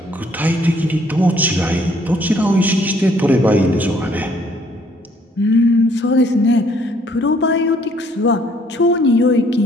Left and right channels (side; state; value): both; normal; correlation 0.63